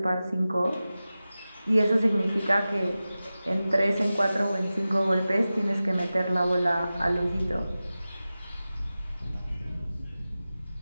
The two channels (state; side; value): inverted; both; correlation -0.95